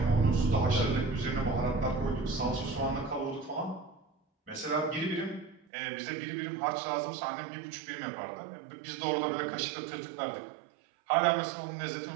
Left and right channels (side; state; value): left; drops out; at 5.6 s